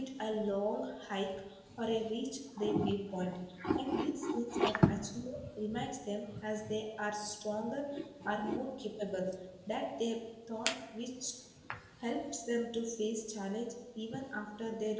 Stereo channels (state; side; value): identical; both; correlation 1.00